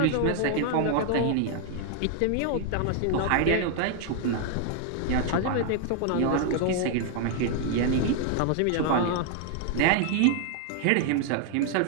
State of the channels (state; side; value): different; both; correlation 0.00